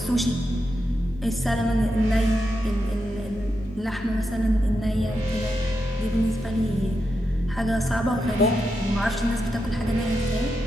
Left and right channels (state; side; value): normal; both; correlation 0.86